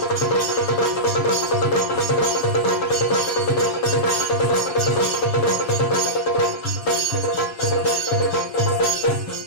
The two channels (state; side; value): late; right; 7.0 ms